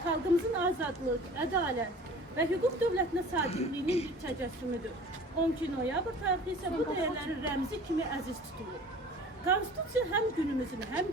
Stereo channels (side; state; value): both; normal; correlation 0.44